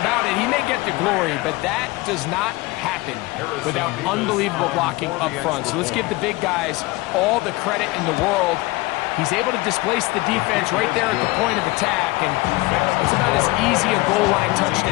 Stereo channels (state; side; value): quieter; right; 21.8 dB